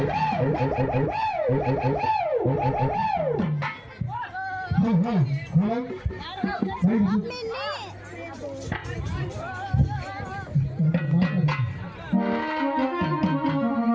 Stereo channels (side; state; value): both; identical; correlation 1.00